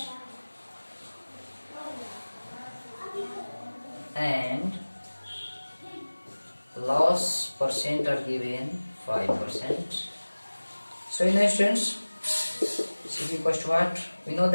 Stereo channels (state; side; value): inverted; both; correlation -1.00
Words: and loss percent are given 5%. So in essence, CP equals to what? We know